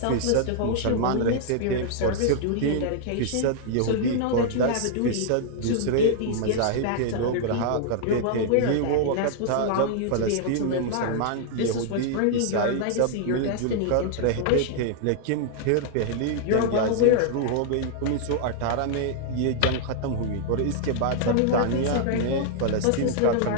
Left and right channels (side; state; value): both; different; correlation -0.01